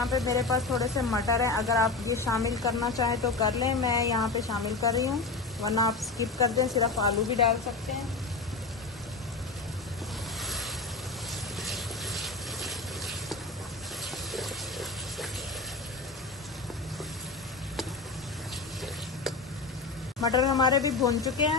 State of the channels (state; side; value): quieter; right; 3.7 dB